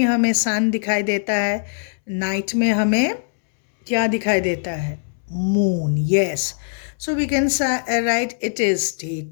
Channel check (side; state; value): right; silent; 65 dB below the other